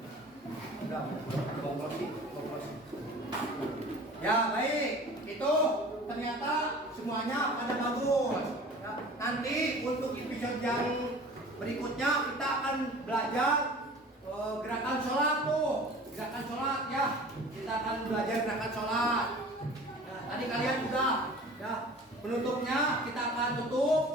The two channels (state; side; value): normal; both; correlation 0.43